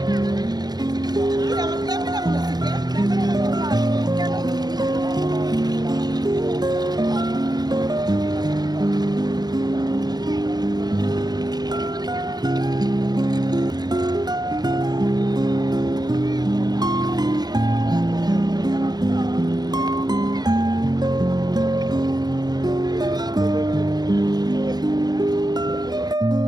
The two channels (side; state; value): left; late; 0.19 ms